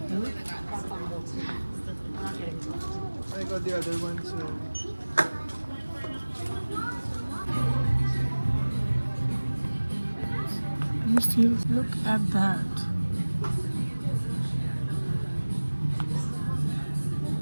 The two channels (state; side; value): inverted; both; correlation -1.00